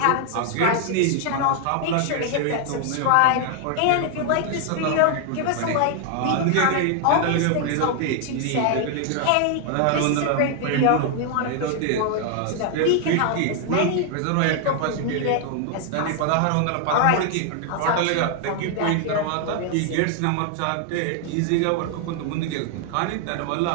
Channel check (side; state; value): both; different; correlation 0.00